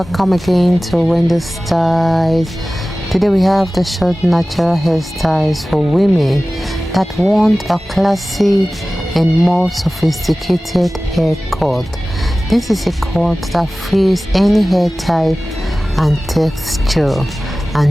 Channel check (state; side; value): normal; both; correlation 0.97